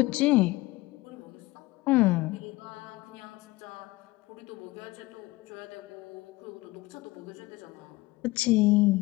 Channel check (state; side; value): quieter; right; 20.3 dB